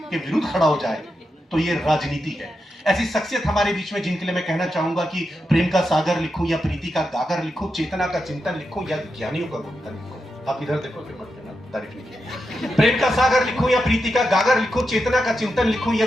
के विरुद्ध खड़ा हो जाए तो ये राजनीति है। ऐसी शख्सियत हमारे बीच में जिनके लिए मैं कहना चाहूंगा कि प्रेम का सागर लिखूं या प्रीति का गागर लिखूं, चेतना का चिंतन लिखूं या ज्ञानियों का गुंथन लिखूं। आप इधर देखो, तारीफ नहीं किया। प्रेम का सागर लिखूं या प्रीति का गागर लिखूं, चेतना का चिंतन लिखूं या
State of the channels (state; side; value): normal; both; correlation 0.87